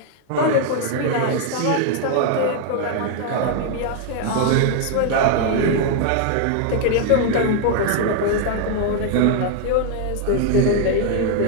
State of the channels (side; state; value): both; different; correlation 0.00